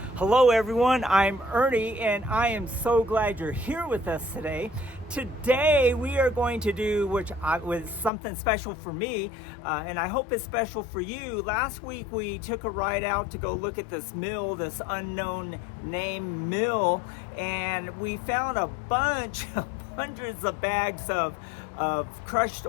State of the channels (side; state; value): right; drops out; at 8.1 s